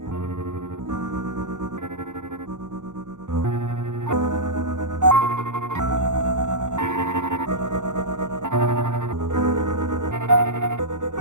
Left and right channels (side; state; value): left; late; 0.85 ms